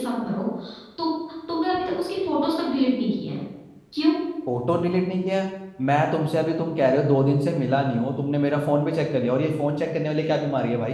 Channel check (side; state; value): both; identical; correlation 1.00